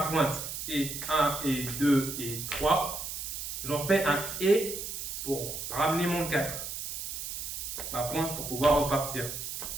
pointe, et 1, et 2, et 3, j'en fais un et pour ramener mon 4. Ma pointe pour pouvoir repartir.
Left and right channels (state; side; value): noise; right; hiss, 6 dB below the sound